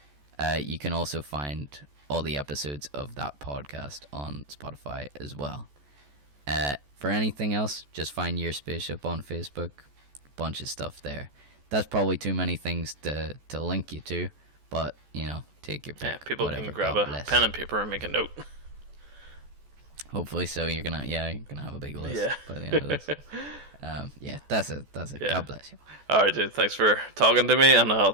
You can also find all the episodes of that podcast on Spotify as well. For anything else, just find Your Spaceship on Facebook. Bunch of stuff there. That's probably too many things to link you to, but take your pick. People can grab a pen and paper and make a note. Hopefully so. You're gonna have a big list by the end of this. That's it. Yeah. God bless you. Alright, dude, thanks for talking to me, and I'll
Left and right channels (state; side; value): late; left; 14 ms